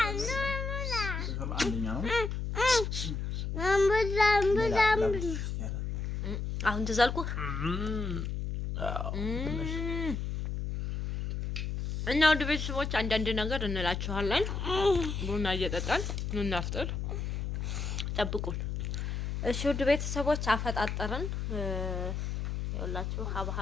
አሁን ትዛልኩህ እና ወደ ቤተሰቦች አንዳንድ ነገር እንላችኋለን። ቡና እየጠጣን እናፍጥር፣ ጠብቁን። እሺ ውድ ቤተሰቦች አፈጣጠርን ይኸውላችሁ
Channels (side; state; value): left; noise; hum, 3 dB below the sound